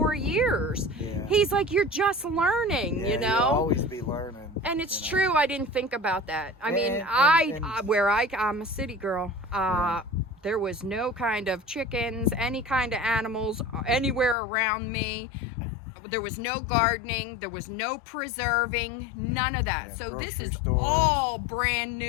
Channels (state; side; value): drops out; right; at 14.4 s